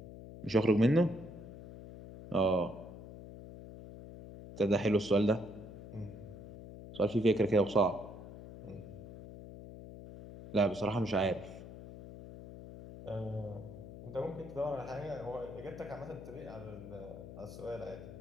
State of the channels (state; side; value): noise; left; hum, 13 dB below the sound